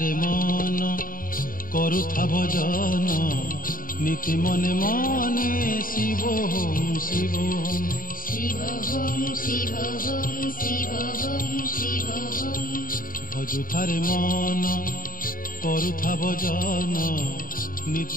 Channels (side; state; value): right; late; 0.41 ms